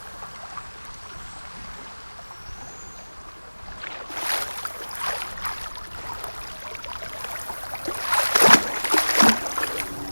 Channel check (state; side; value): inverted; both; correlation -1.00